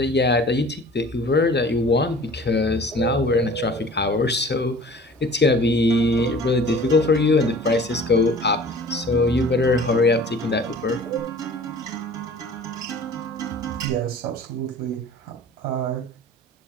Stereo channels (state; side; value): normal; both; correlation 0.46